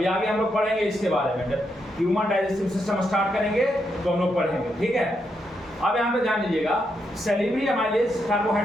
आगे हम लोग पढ़ेंगे इसके बारे में, जब ह्यूमन डाइजेस्टिव सिस्टम स्टार्ट करेंगे तो हम लोग पढ़ेंगे, ठीक है। अब यहाँ पे ध्यान दीजिएगा, सैलिवरी अमाइलेज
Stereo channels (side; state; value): both; normal; correlation 0.81